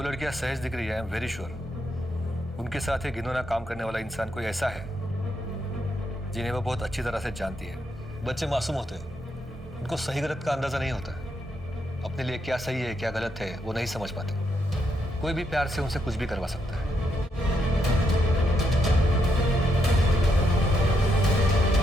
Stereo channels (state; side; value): normal; both; correlation 0.79